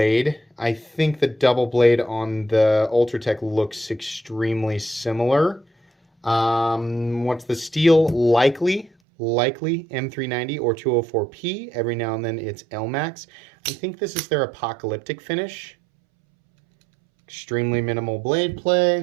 I think the double blade on the Ultratech looks extremely similar. What's the steel? Likely M390 or 204P. Every now and then it's LMAX. I think this is their apocalyptic finish. Extremely minimal blade play,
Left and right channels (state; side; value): drops out; left; at 8.9 s